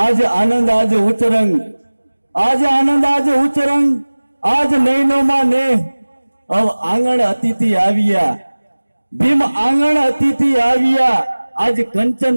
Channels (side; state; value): both; inverted; correlation -1.00